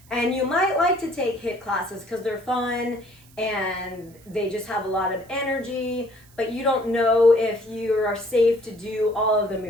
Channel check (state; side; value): noise; right; hiss, 27 dB below the sound